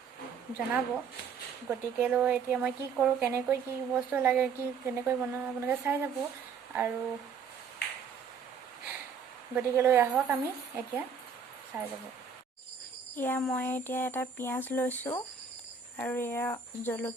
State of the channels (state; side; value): quieter; left; 6.1 dB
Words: জনাব। গতিকেলৈ এতিয়া মই কি কৰোঁ, কেনেকৈ কি বস্তু লাগে, কেনেকৈ বনাওঁ আপোনালোকে চাই যাব। আৰু গতিকেলৈ আহক আমি এতিয়া চাই যাব। এয়া মই এতিয়া এটা পিঁয়াজ লৈছোঁ আৰু এয়া